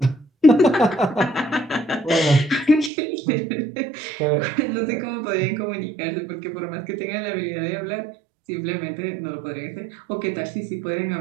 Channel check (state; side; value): drops out; left; at 2.9 s